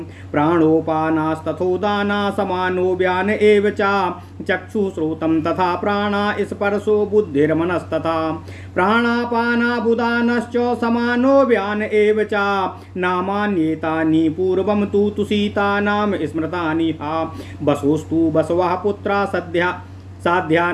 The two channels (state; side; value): identical; both; correlation 1.00